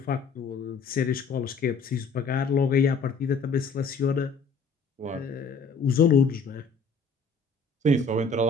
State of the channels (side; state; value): right; quieter; 4.4 dB